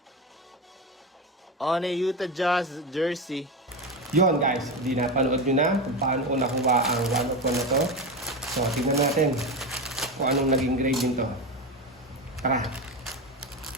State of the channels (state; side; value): normal; both; correlation 0.18